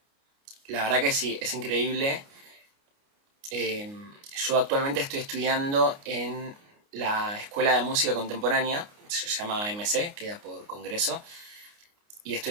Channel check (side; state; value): left; late; 29 ms